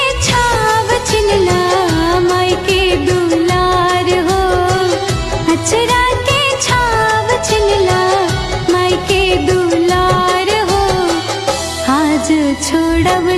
छाव छिनला माई के दुलार हो। अचरा के छाव छिनला माई के दुलार हो। आज छोड़ब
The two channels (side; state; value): both; identical; correlation 1.00